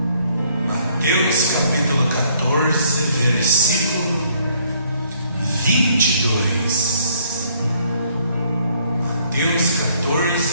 Mateus capítulo 14, versículo 22. Mateus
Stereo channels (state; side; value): inverted; both; correlation -0.66